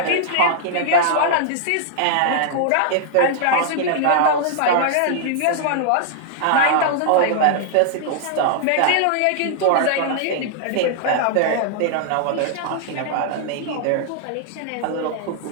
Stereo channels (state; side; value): different; both; correlation -0.01